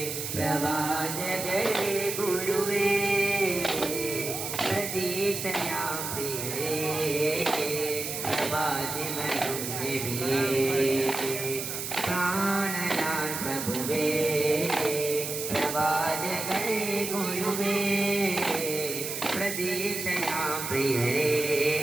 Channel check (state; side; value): noise; right; hiss, 5 dB below the sound